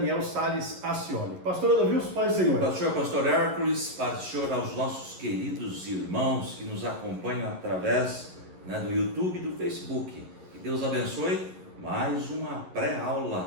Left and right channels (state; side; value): late; left; 11 ms